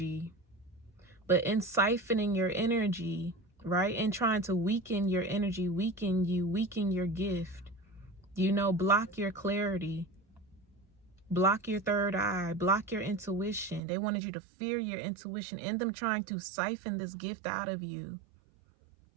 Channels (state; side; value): drops out; left; at 13.8 s